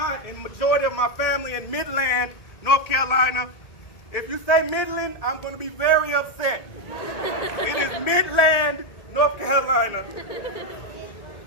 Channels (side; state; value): right; late; 1.8 ms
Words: and majority of my family in Midland, North Carolina. If you say Midland, I'm going to be very upset. It is Midland, North Carolina.